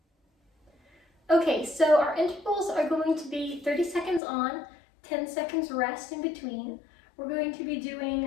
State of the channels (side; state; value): right; drops out; at 4.2 s